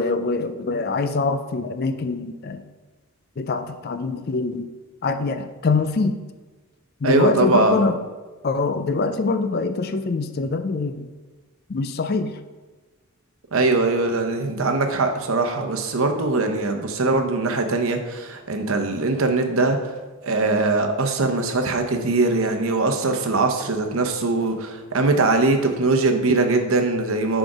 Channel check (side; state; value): both; normal; correlation 0.06